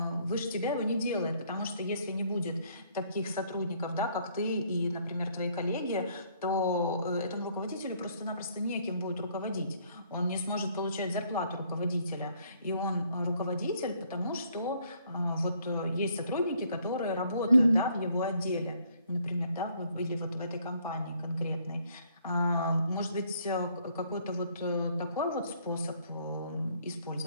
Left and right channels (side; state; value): both; inverted; correlation -0.65